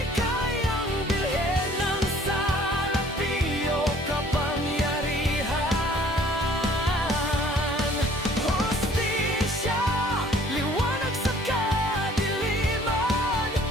kayang bilhin ng salapi o kapangyarihan. Hostisya, liwanag sa kadiliman.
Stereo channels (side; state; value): both; normal; correlation 0.56